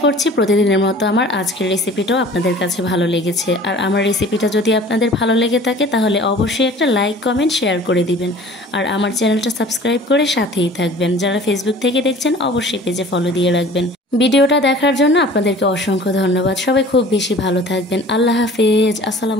করছি প্রতিদিনের মতো আমার আজকের রেসিপিটাও আপনাদের কাছে ভালো লেগেছে। আর আমার রেসিপিটা যদি আপনাদের ভালো লেগে থাকে তাহলে অবশ্যই একটা লাইক, কমেন্ট, শেয়ার করে দিবেন। আর আমার চ্যানেলটা সাবস্ক্রাইব করে সাথেই থাকবেন। যারা ফেসবুক থেকে দেখছেন অবশ্যই পেজে ফলো দিয়ে রাখবেন। ভিডিওটা দেখার জন্য আপনাদেরকে অসংখ্য ধন্যবাদ। সবাই খুব বেশি ভালো থাকবেন। আল্লাহ হাফেজ।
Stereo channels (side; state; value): both; normal; correlation 0.46